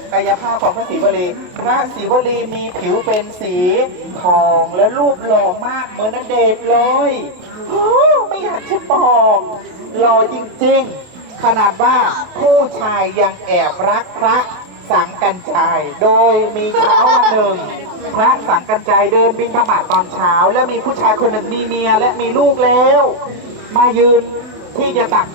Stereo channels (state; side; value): late; left; 28 ms